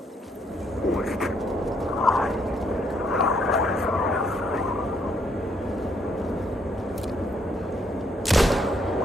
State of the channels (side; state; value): both; normal; correlation 0.71